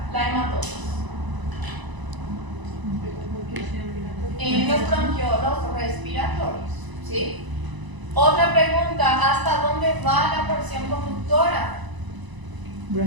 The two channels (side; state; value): left; late; 1.0 ms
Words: la hematosis, en los bronquiolos respiratorios, ¿sí? Otra pregunta, ¿hasta dónde va la porción conductora?